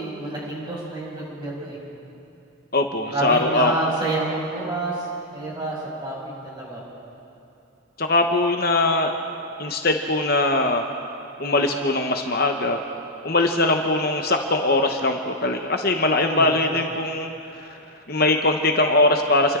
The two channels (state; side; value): normal; both; correlation -0.08